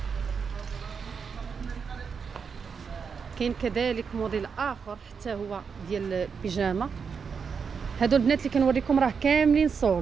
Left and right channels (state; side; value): quieter; left; 6.0 dB